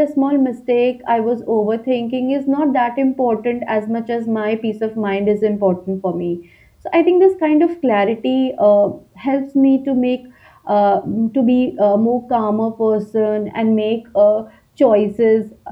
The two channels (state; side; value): identical; both; correlation 1.00